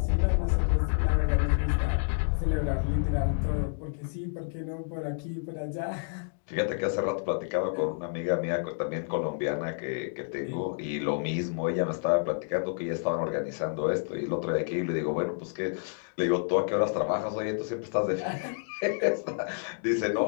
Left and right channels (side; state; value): right; silent; digital silence